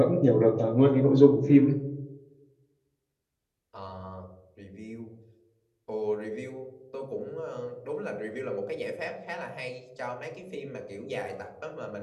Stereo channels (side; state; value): both; identical; correlation 1.00